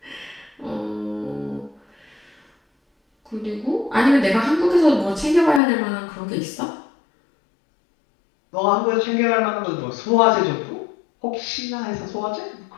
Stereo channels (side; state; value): right; drops out; at 5.6 s